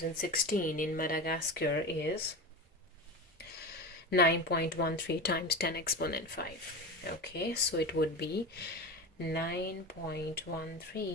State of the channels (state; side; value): normal; both; correlation 0.25